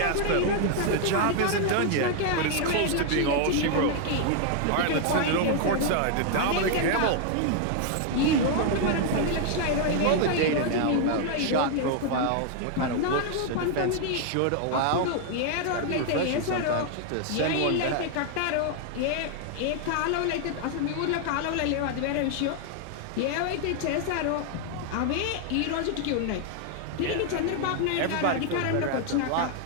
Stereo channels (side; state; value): both; different; correlation 0.00